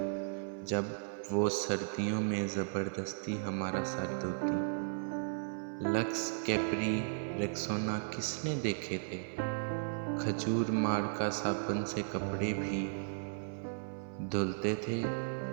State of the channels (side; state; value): left; silent; 54 dB below the other